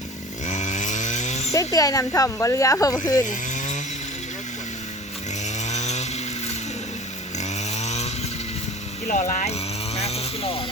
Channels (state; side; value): normal; both; correlation 0.41